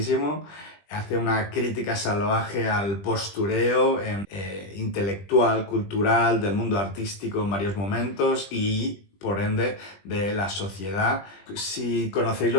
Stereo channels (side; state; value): right; late; 20 ms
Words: Hace una crítica salvaje al postureo intelectual, cultural, del mundo artístico en varios momentos y, por ende, de la sociedad. Si conocéis